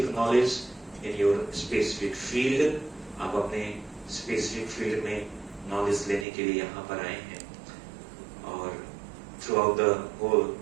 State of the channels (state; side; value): drops out; left; at 6.2 s